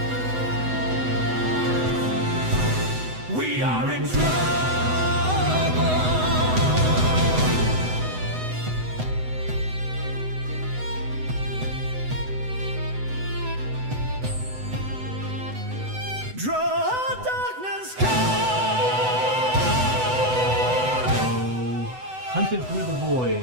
We are in trouble. Draw darkness Hunted through the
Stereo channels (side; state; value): left; late; 8.0 ms